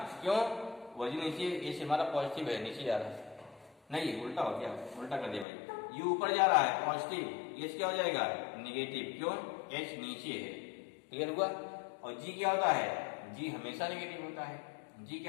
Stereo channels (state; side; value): drops out; right; at 5.5 s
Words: क्यों, ओरिजिन नीचे, h हमारा पॉजिटिव है, नीचे जा रहा है, नहीं उल्टा हो गया, उल्टा कर दिया भाई, u ऊपर जा रहा है पॉजिटिव, h क्या हो जाएगा नेगेटिव, क्यों, h नीचे है, क्लियर हुआ। और g क्या होता है, g हमेशा नेगेटिव होता है, g